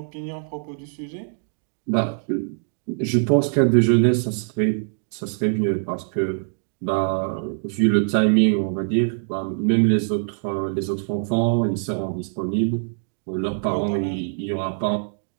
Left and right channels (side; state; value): left; silent; digital silence